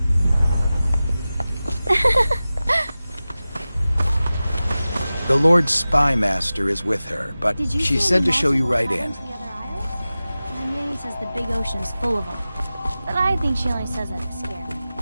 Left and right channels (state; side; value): inverted; both; correlation -0.96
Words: The Lord Spy Master is with her, but she said to show you right in. My nanny says the big ocean's full of them, but I think she only says that to scare me.